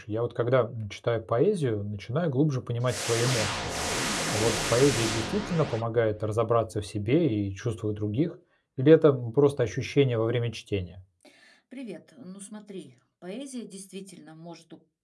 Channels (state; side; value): identical; both; correlation 1.00